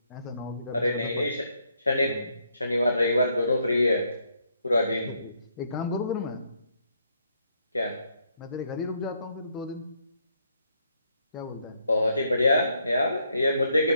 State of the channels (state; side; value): inverted; both; correlation -0.73